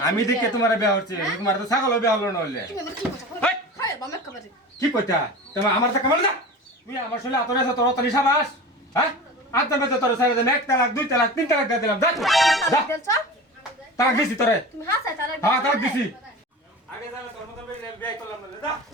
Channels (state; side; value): normal; both; correlation 0.33